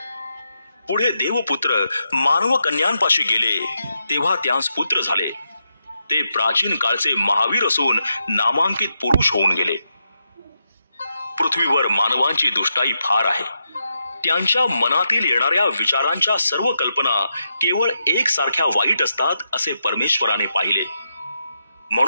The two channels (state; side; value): inverted; both; correlation -0.83